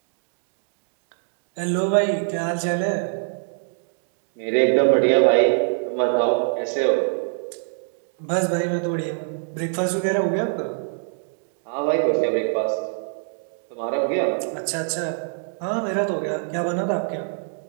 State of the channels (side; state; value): left; silent; 63 dB below the other